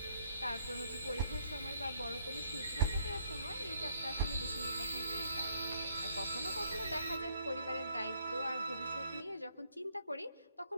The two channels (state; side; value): inverted; both; correlation -0.68